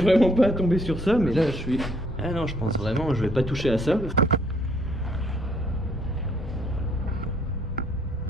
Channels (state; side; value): normal; both; correlation 0.65